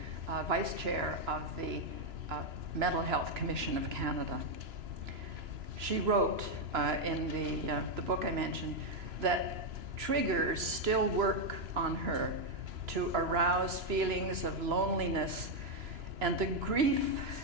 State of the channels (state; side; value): late; left; 2.9 ms